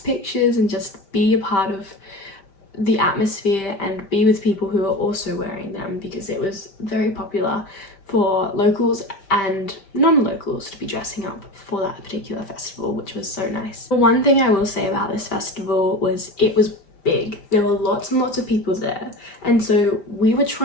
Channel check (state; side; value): late; right; 5.1 ms